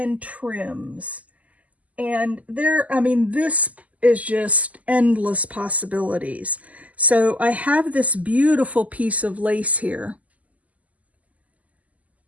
trims. And I mean, this is just endless possibilities. So I have this beautiful piece of lace here.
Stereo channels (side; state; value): left; late; 0.073 ms